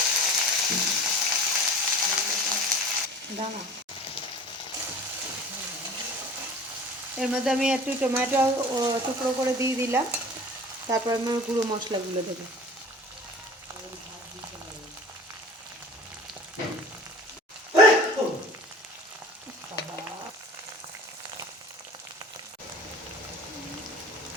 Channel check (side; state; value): both; normal; correlation 0.42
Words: দানা এর মধ্যে আমি একটু টমেটো টুকরো করে দিয়ে দিলাম। তারপর আমি গুঁড়ো মশলাগুলো দেবো।